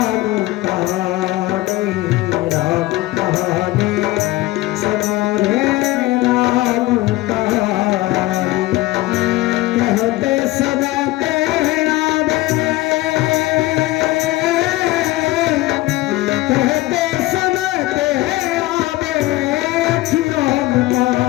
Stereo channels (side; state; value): right; quieter; 18.3 dB